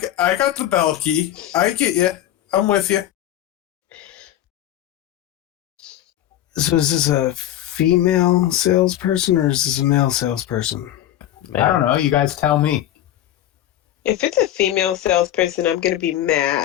I got the bell key. I get you. I'm with you. So is this a female salesperson or is this a male salesperson? I don't know. You guys tell me. If it's a female salesperson, I'm gonna be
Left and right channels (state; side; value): quieter; right; 12.5 dB